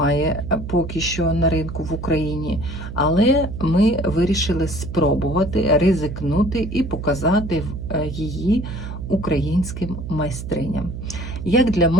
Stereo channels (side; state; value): right; noise; hum, 8 dB below the sound